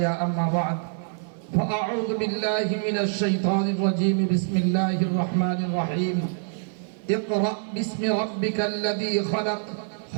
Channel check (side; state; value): left; silent; digital silence